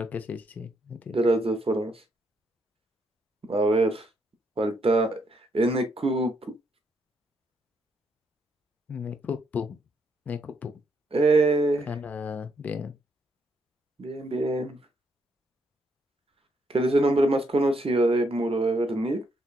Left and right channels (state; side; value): normal; both; correlation 0.75